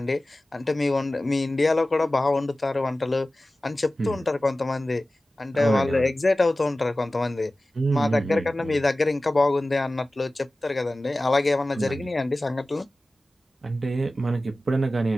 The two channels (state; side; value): normal; both; correlation 0.96